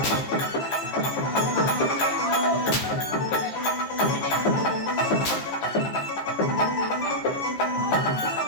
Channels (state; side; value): late; right; 15 ms